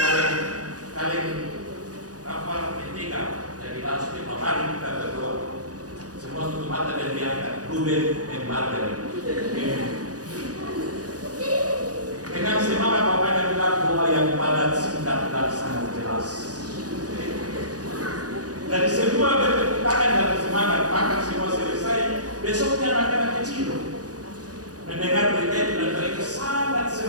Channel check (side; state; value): left; late; 0.68 ms